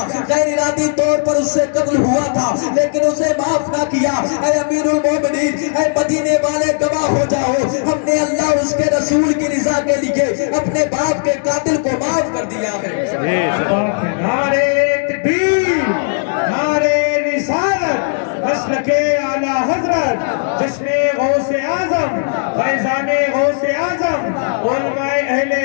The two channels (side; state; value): right; silent; digital silence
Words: غیر ارادی طور پر اس سے قتل ہوا تھا لیکن اسے معاف نہ کیا۔ اے امیر المومنین، اے مدینے والے گواہ ہو جاؤ، ہم نے اللہ اور اس کے رسول کی رضا کے لیے اپنے باپ کے قاتل کو معاف کر دیا ہے۔ نعرہ تکبیر، نعرہ رسالت، مسلک اعلی حضرت، جشن غوث اعظم، فیضان غوث اعظم، علماء اہل